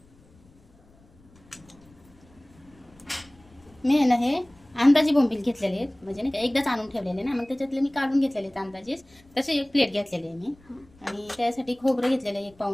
मी आहे ना हे अंदाजी बोंबील घेतलेले आहेत, म्हणजे नाही का एकदाच आणून ठेवलेले ना, मग त्याच्यातले मी काढून घेतलेले आहेत अंदाजेच. तसे एक प्लेट घेतलेली आहे मी. आणि त्यासाठी खोबरं घेतलेलं आहे 1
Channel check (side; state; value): left; noise; rumble, 28 dB below the sound